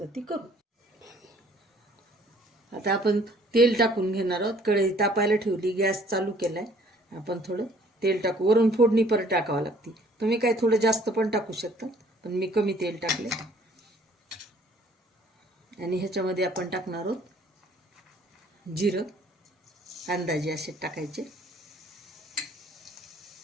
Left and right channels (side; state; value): both; normal; correlation 0.58